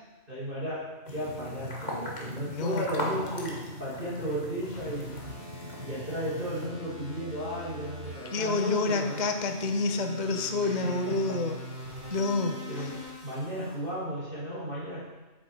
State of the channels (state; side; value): late; left; 2.1 ms